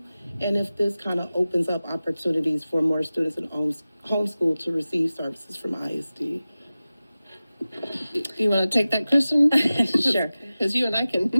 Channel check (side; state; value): both; inverted; correlation -0.96